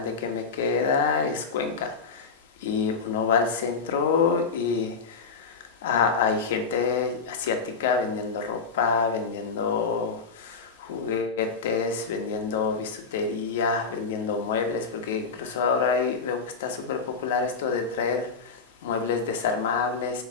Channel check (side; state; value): right; quieter; 5.0 dB